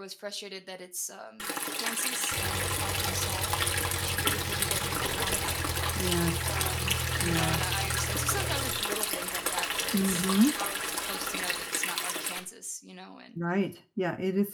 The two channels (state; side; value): identical; both; correlation 1.00